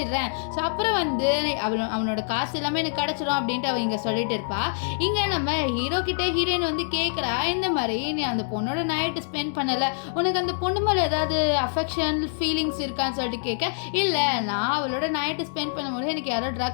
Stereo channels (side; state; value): right; silent; digital silence